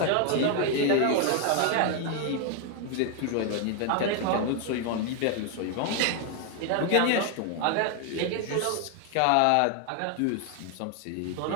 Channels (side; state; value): both; different; correlation 0.01